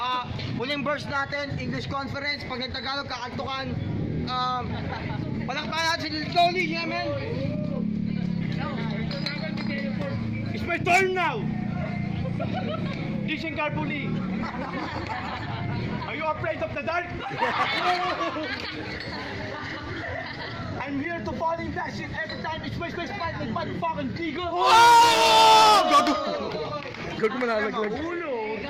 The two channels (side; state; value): both; identical; correlation 1.00